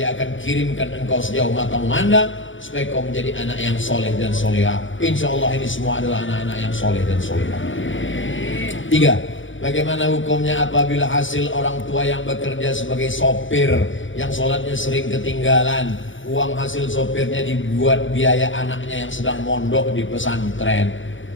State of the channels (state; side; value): late; right; 0.56 ms